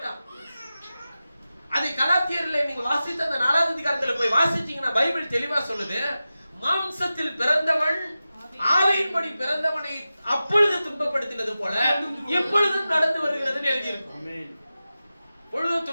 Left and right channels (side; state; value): both; inverted; correlation -0.94